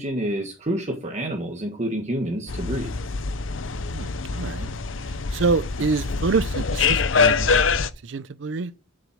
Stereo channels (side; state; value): both; normal; correlation 0.18